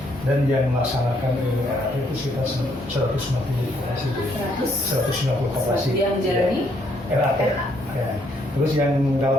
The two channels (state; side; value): normal; both; correlation 0.70